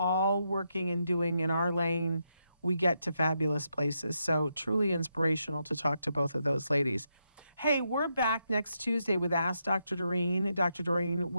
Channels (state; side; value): inverted; both; correlation -0.81